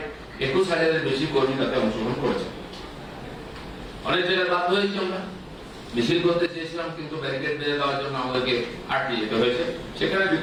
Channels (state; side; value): identical; both; correlation 1.00